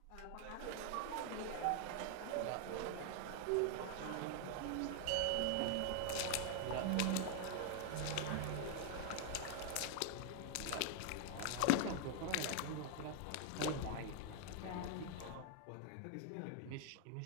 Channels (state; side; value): different; both; correlation 0.00